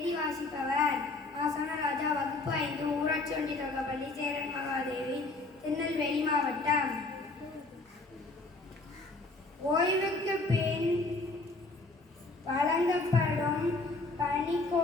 வாசிப்பவர் ஆசனராஜா. வகுப்பு 5, ஊராட்சி ஒன்றிய தொடக்கப்பள்ளி, சேரன் மகாதேவி, திருநெல்வேலி மாவட்டம். ஓய்வுக்கு பின் வழங்கப்படும்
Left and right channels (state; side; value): quieter; right; 3.2 dB